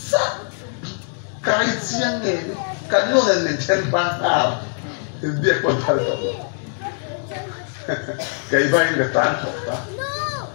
kajian ni kan lo yang mencari bangkar, dia kontak tu, kaya bayi letan kota.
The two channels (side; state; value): right; silent; 61 dB below the other